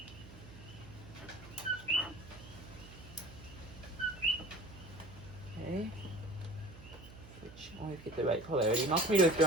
Okay. Always get the right polarity. Multimeters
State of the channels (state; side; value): noise; right; hum, 17 dB below the sound